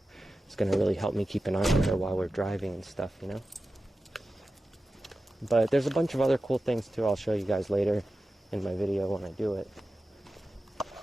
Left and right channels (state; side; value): normal; both; correlation 0.93